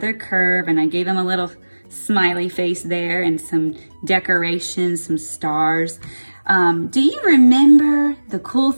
curve, and I gave him a little smiley face there and some decorations, some stars. Do you remember the cool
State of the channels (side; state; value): both; inverted; correlation -1.00